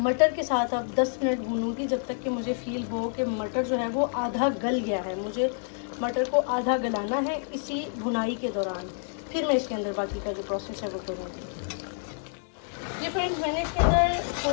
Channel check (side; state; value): right; silent; 59 dB below the other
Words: मटर के साथ अब 10 मिनट भूनूंगी, जब तक कि मुझे फील हो कि मटर जो है वो आधा गल गया है। मुझे मटर को आधा गलाना है इसी भुनाई के दौरान, फिर मैं इसके अंदर बाकी का जो प्रोसेस है वो करूँगी। ये फ्रेंड्स, मैंने इसके अंदर